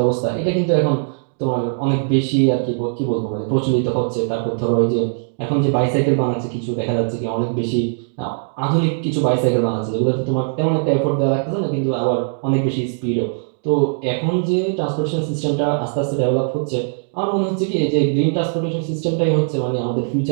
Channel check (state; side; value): silent; left; digital silence